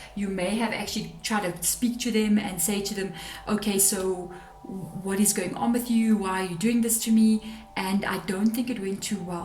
You may have actually tried to speak to them and say to them, okay, so what is going on with you? Why are you doing this to me? And I don't think it went too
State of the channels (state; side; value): identical; both; correlation 1.00